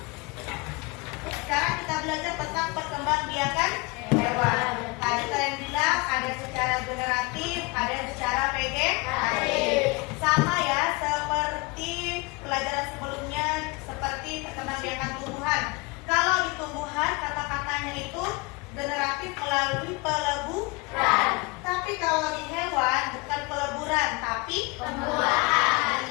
Sekarang kita belajar tentang perkembangbiakan hewan. Tadi kalian bilang ada secara generatif, ada yang secara vegetatif. Sama ya seperti pelajaran sebelumnya, seperti perkembangbiakan tumbuhan. Kalau di tumbuhan kata-katanya itu generatif melalui peleburan. Tapi kalau di hewan bukan peleburan, tapi pembuahan.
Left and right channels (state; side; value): quieter; right; 26.7 dB